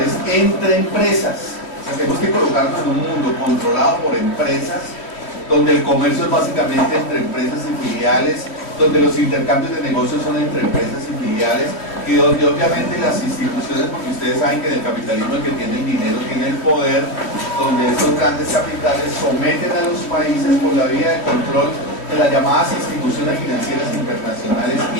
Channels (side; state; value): right; late; 3.0 ms